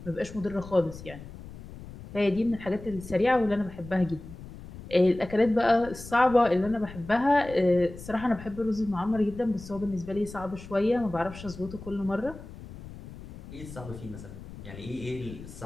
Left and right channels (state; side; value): noise; left; rumble, 15 dB below the sound